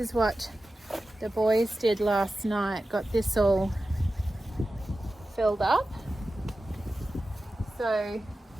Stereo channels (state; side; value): normal; both; correlation 0.93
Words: what the boys did last night. Got this all filled up. So